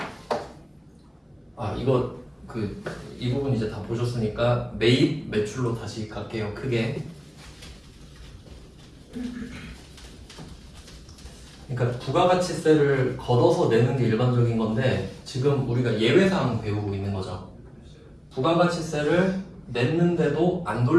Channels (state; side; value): identical; both; correlation 1.00